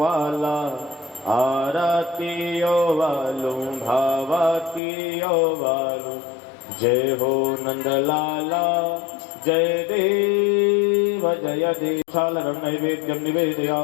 आरती ओ वालू भावती ओ वालू। जय हो नंदलाला जय देव जय देव। सालरम नैवेद्यम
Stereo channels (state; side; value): drops out; right; at 4.8 s